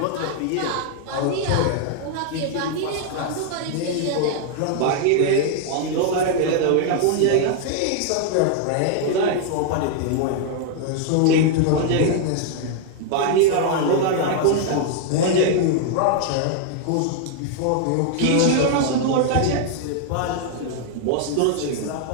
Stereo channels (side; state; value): both; different; correlation 0.00